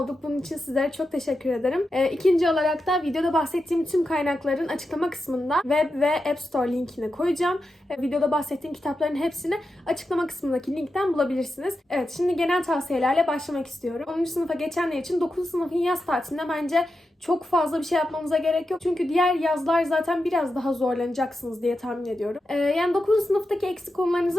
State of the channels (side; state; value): both; normal; correlation 0.89